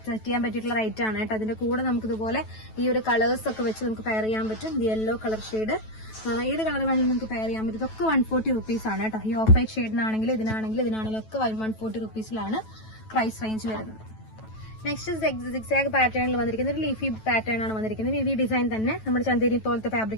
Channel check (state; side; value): late; right; 9.2 ms